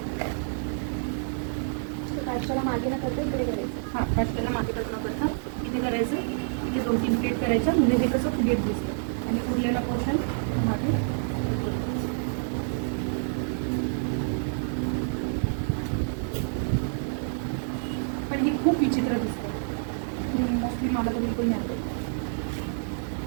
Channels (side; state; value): left; silent; 59 dB below the other